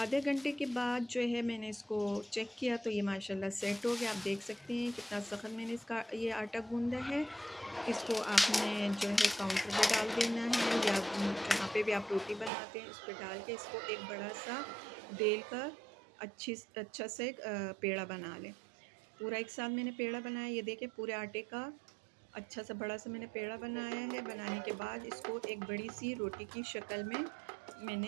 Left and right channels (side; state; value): left; drops out; at 12.5 s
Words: घंटे के बाद जो है मैंने इसको चेक किया तो ये माशाल्लाह सेट हो गया। आप देख सकते हैं कितना सख्त मैंने इसका ये आटा गूंदा है। इसको आपने जो है काउंटर पे डाल देना है, या जहाँ पे भी आप रोटी बनाते हैं उस पर डाल के इसको एक बड़ा सा बेल कर अच्छा से पेड़ा बना लें। पूरा एक साथ मैंने पेड़ा बनाया। ये देखें पूरे आटे का अच्छा सा बड़ा सा मैंने पेड़ा बनाया है। बनाने के बाद इसको एक बड़ी सी रोटी की शक्ल में